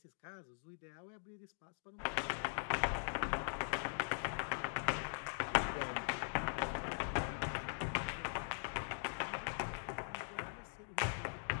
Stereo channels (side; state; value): right; silent; digital silence